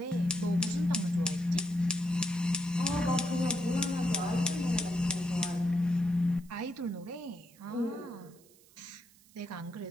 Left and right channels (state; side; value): noise; right; hiss, 27 dB below the sound